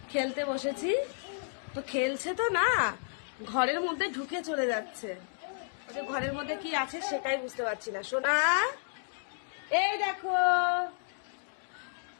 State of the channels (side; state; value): right; silent; digital silence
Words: খেলতে বসেছি। তো খেলছে তো না, ঘরের মধ্যে ঢুকে চলে যাচ্ছে। ওটা ঘরের মধ্যে কি আছে সেটাই বুঝতে পারছি না। সোনা, এই দেখো,